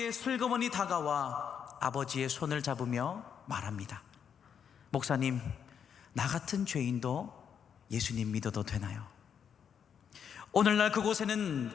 슬그머니 다가와 아버지의 손을 잡으며 말합니다. 목사님, 나 같은 죄인도 예수님 믿어도 되나요? 오늘날 그곳에는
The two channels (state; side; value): quieter; right; 7.7 dB